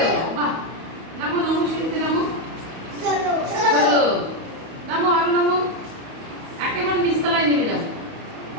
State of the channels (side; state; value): left; late; 31 ms